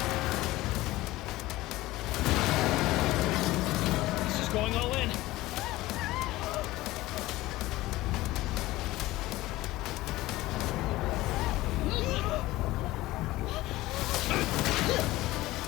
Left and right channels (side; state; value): right; quieter; 18.0 dB